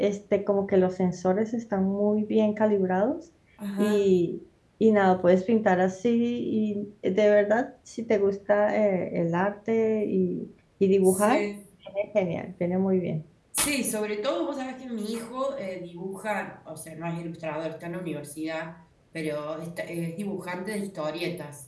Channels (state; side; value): identical; both; correlation 1.00